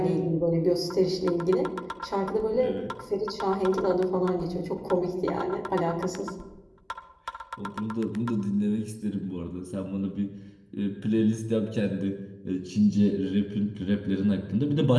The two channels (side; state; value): both; identical; correlation 1.00